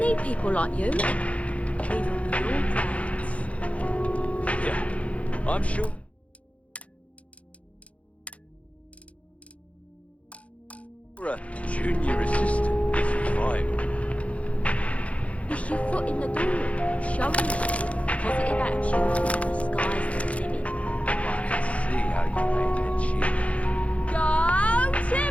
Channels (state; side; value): late; right; 0.064 ms